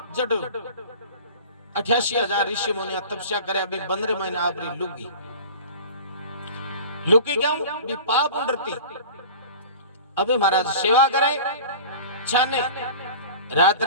जट 88,000 ऋषि मुनि तपस्या करे अभी 15 महीने आपरी लुगी लुकी क्यों भी पाप उड़ती। अबे महाराज सेवा करे छाने रात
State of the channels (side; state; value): both; inverted; correlation -0.39